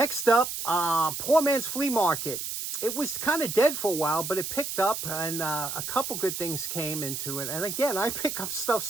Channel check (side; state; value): right; noise; hiss, 5 dB below the sound